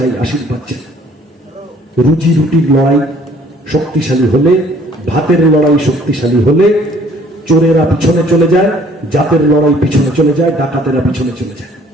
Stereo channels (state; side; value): normal; both; correlation 0.58